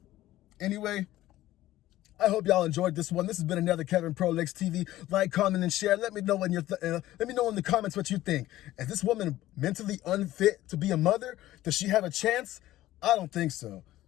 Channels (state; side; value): quieter; right; 15.2 dB